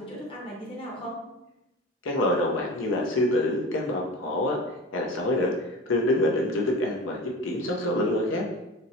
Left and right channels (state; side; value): normal; both; correlation 0.33